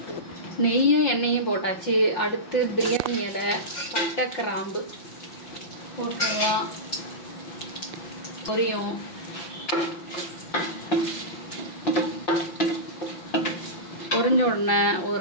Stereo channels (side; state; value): right; late; 5.9 ms